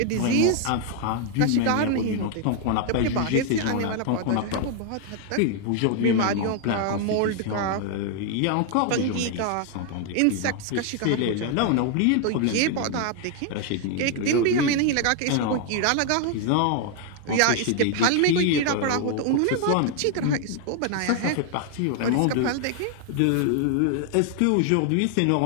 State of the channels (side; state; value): both; different; correlation 0.00